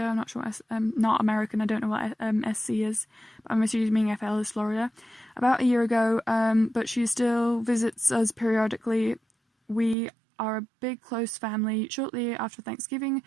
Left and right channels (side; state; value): left; drops out; at 10.0 s